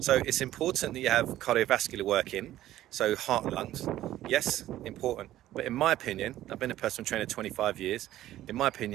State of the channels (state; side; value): quieter; left; 13.9 dB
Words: it's important that you have cardiovascular work in, so heart and lungs. Yes, important. But in my opinion, I've been a personal trainer 25 years. In my